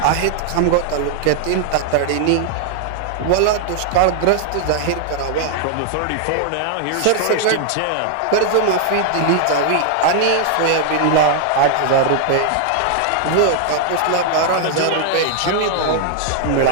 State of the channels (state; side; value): different; both; correlation 0.00